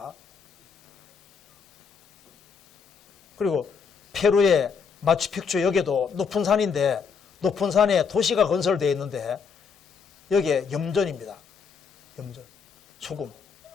그리고 페루의 마추픽추 여기도 높은 산인데 높은 산에 도시가 건설되어 있는데 여기에 염전입니다. 염전, 소금.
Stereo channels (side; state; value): right; quieter; 6.0 dB